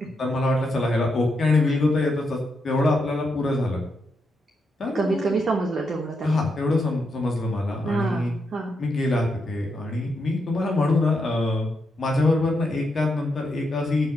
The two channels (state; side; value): normal; both; correlation 0.82